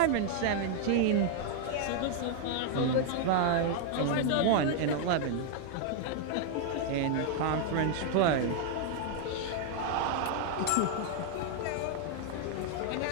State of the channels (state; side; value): different; both; correlation -0.01